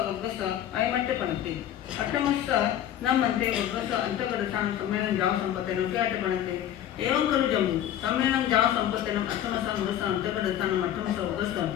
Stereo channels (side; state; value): right; quieter; 11.1 dB